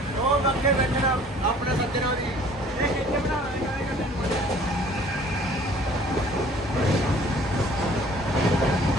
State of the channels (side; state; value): both; normal; correlation 0.53